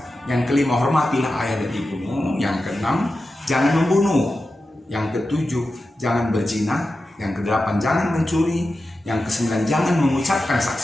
Yang kelima, hormatilah ayah dan ibumu. Yang keenam, jangan membunuh. Yang ketujuh, jangan berzina. Yang kedelapan, jangan mencuri. Yang kesembilan, jangan mengucapkan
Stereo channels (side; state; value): both; normal; correlation 0.92